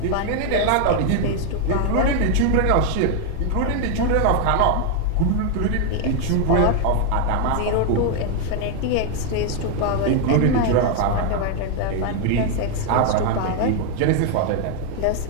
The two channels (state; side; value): different; both; correlation 0.00